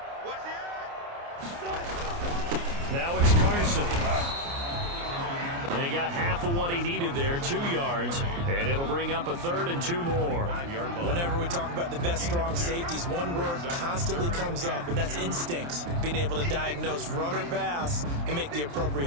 Now it's Carson. And he got half of what he needed there, 2 yards, and it'll bring up a 3rd and 2 more. Whenever we talk about the best strong safeties, one word constantly comes up, and that's instincts. Being able to diagnose run or pass and make the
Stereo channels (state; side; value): late; left; 29 ms